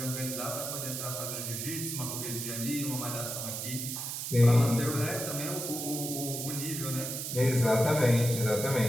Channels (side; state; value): right; noise; hiss, 4 dB below the sound